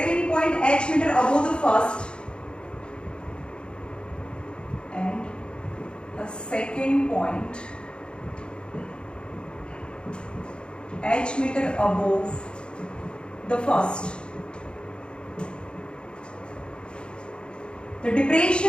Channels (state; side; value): late; right; 0.054 ms